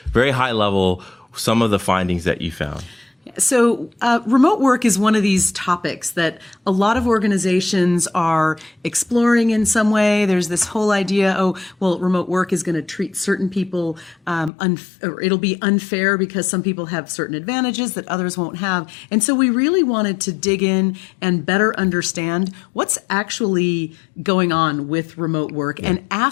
very high level, some of the findings that you found? So remote work is one of these topics that a lot of organizations are exploring in some way. There's this whole idea, remote work is going to treat certain people, or it'll be unfair because some people have certain advantages that others won't have. And so we really wanted to dig in and better understand what's actually going on with remote work and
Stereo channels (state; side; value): drops out; right; at 14.5 s